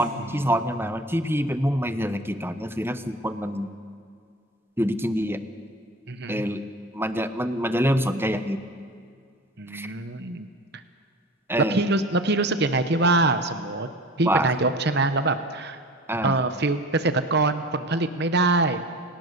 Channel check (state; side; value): normal; both; correlation 0.38